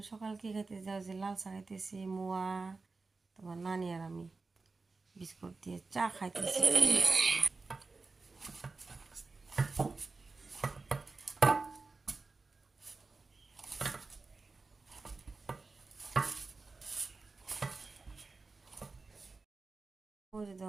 সকাল কি খাইতেছি যাও যে লাল চা খাইতেছি, মোয়া তোমার নানি আর আমি বিস্কুট দিয়ে চা খাইতেছি। ওই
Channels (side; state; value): left; quieter; 3.9 dB